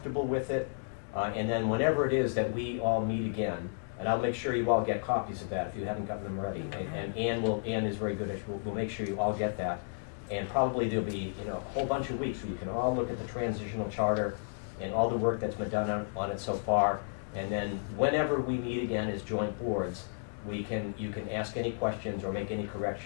with it, and then whenever it is that we all meet again, and I'll make sure you all get copies of that if you haven't gotten them ready. And Ann is very good at, we'll make sure you all get that. And probably there'll be a whole bunch of weeks where you can all look at the transitional charter and all the work that's been done on it so far. And then whenever we meet again as joint boards, you can ask any questions or make any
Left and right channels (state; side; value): silent; right; digital silence